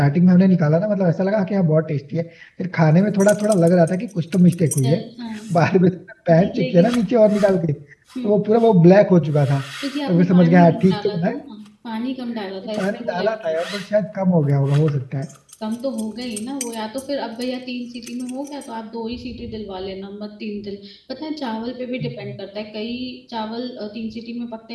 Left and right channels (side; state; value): both; identical; correlation 1.00